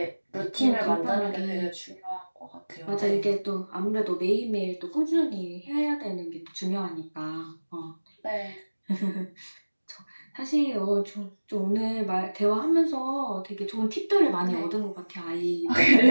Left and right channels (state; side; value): inverted; both; correlation -1.00